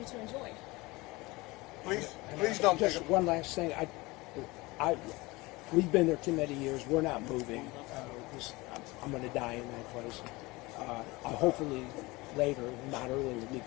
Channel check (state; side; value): quieter; right; 22.6 dB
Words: to enjoy. Please don't. Just one last thing. We've been there too many years. We're not moving. I'm going to die in that place. Hopefully later, not earlier,